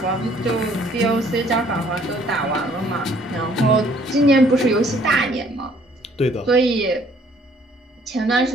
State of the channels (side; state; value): both; normal; correlation 0.61